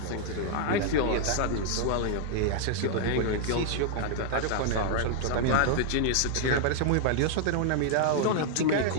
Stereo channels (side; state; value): both; different; correlation -0.01